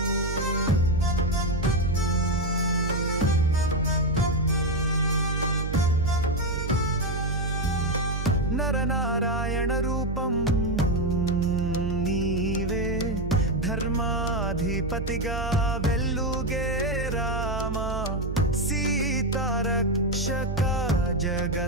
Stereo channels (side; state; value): right; noise; hum, 4 dB below the sound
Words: నరనారాయణ రూపం నీవే ధర్మాధిపతిగా వెల్లుగే రామ సీతారక్షక